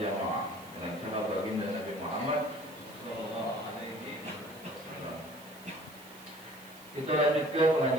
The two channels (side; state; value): right; noise; hiss, 20 dB below the sound